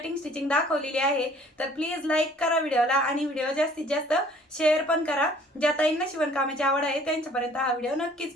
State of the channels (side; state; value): both; normal; correlation 0.55